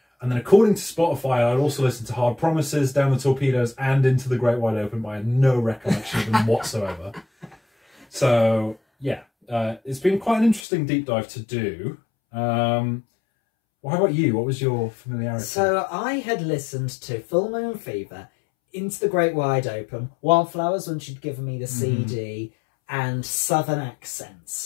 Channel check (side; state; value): right; drops out; at 10.6 s